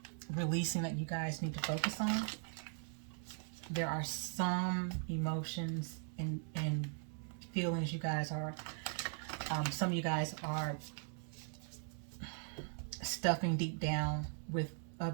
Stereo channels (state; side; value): silent; left; 51 dB below the other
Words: releasing that you guys need to focus on. There are some emotions and feelings you guys are, some of you guys are stuffing deep down with